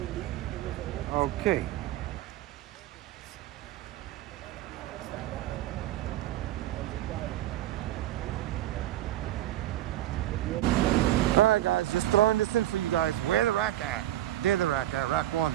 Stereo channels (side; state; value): left; quieter; 13.9 dB